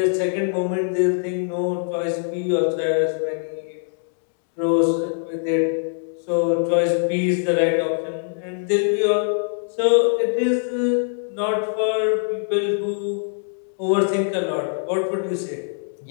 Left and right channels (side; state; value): right; silent; digital silence